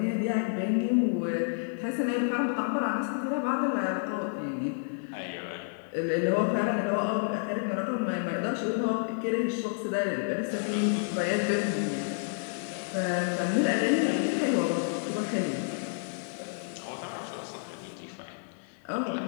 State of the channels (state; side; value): silent; right; 58 dB below the other